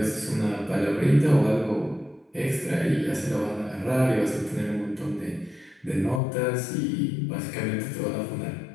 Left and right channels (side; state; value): right; drops out; at 6.2 s